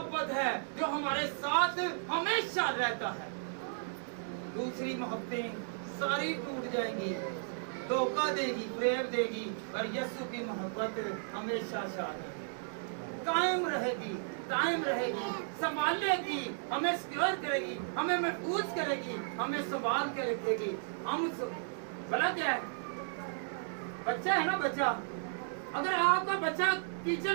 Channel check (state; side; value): silent; left; digital silence